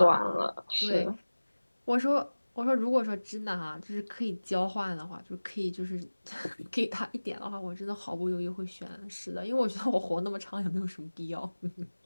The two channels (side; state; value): both; inverted; correlation -1.00